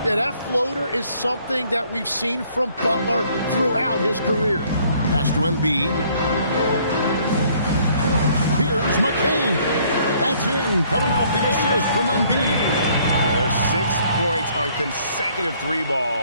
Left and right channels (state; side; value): inverted; both; correlation -0.62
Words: Yeah, that floater is something that we've seen from Butler throughout his career. Pass to Embiid. Here's McCain. That's in, coming off the assist from Embiid. Yeah, there's 6 points on consecutive 3